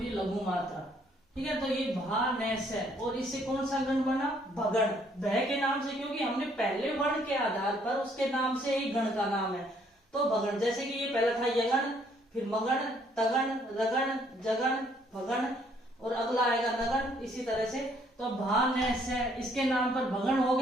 ये लघु मात्रा। ठीक है, तो ये भा न से, और इससे कौन सा गण बना? भगण, भय के नाम से, क्योंकि हमने पहले वर्ण के आधार पर उसके नाम से ही गण का नाम है, तो भगण। जैसे कि ये पहला था यगण, फिर मगण, तगण, रगण, जगण, भगण, और अगला आएगा नगण, इसी तरह से। तो भा न से, इसके नाम पर भगण हो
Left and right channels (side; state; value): both; normal; correlation 0.65